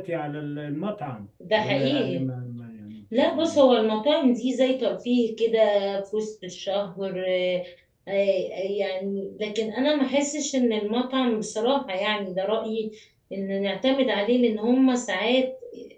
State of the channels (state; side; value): identical; both; correlation 1.00